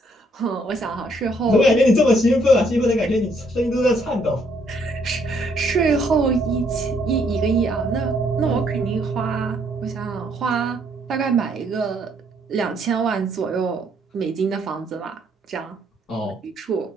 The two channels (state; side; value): normal; both; correlation 0.69